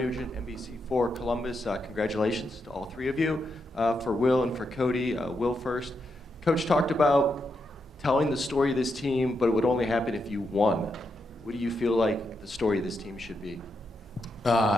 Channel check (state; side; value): normal; both; correlation 0.83